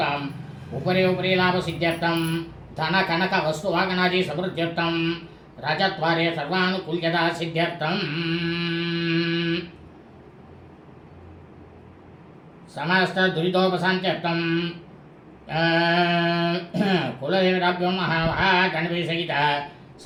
उपरि उपरि लाभसिद्ध्यर्थं धनकनक वस्तुवाहनादि समृद्ध्यर्थं राजद्वारे सर्वानुकूल्यता सिद्ध्यर्थं समस्त दुरितोपशान्त्यर्थं कुलदेवताभ्यो महागणपतिसहित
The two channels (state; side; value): identical; both; correlation 1.00